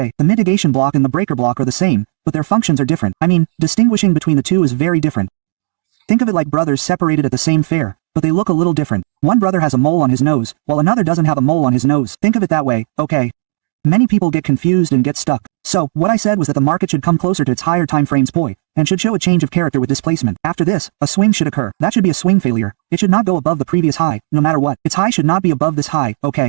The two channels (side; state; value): left; silent; digital silence